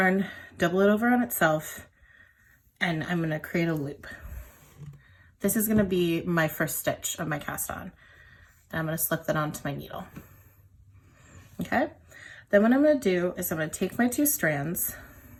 double it over on itself, and I'm going to create a loop. This is going to be my first stitch of my cast on, and I'm going to slip that onto my needle. Okay, then what I'm going to do is I'm going to take my two strands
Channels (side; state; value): both; identical; correlation 1.00